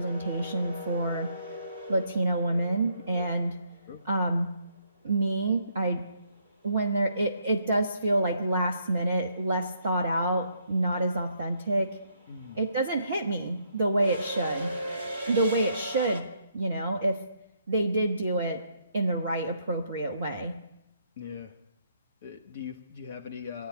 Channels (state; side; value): inverted; both; correlation -0.72